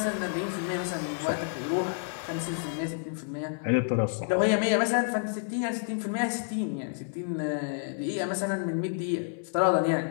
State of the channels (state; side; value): silent; right; digital silence